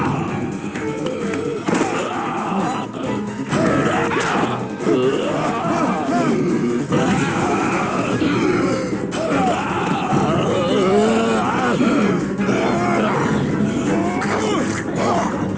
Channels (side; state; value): both; identical; correlation 1.00